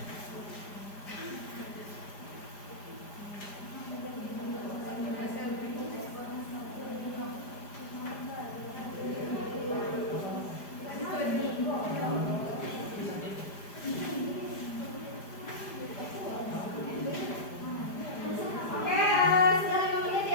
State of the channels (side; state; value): right; late; 5.0 ms